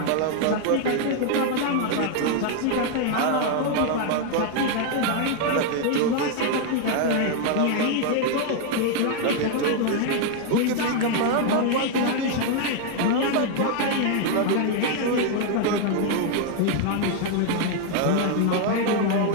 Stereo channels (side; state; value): both; different; correlation 0.00